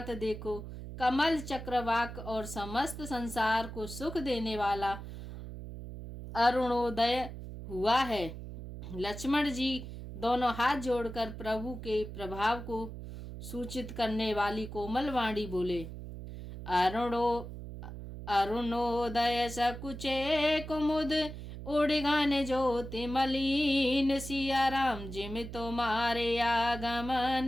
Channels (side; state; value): right; noise; hum, 10 dB below the sound